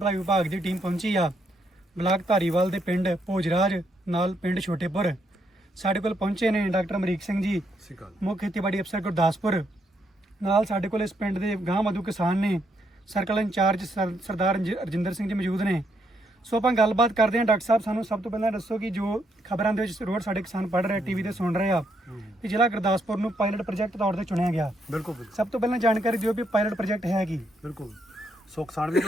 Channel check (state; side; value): normal; both; correlation 0.76